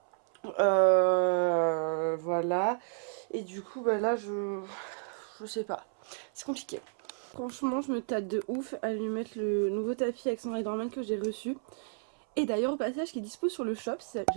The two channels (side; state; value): left; silent; 57 dB below the other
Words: Voilà. Et du coup, là, je sais pas. C'est compliqué. Franchement, je me tâte de ouf à lui mettre le nouveau tapis avec son Riderman que j'ai reçu. Et d'ailleurs au passage qui est dispo sur le shop, si